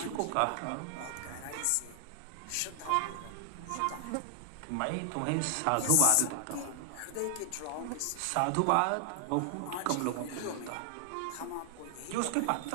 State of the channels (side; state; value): both; different; correlation 0.00